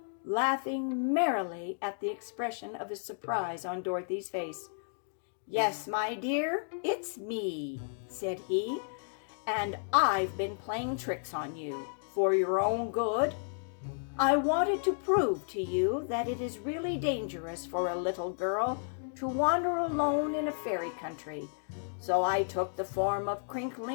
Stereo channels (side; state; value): right; silent; digital silence